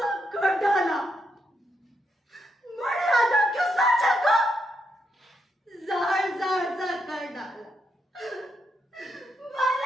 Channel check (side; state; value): both; normal; correlation 0.80